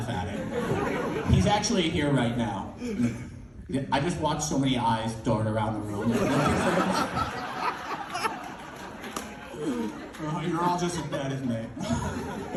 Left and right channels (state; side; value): identical; both; correlation 1.00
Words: at it. He's actually here right now. I just watched so many eyes dart around the room. You're all just as bad as me.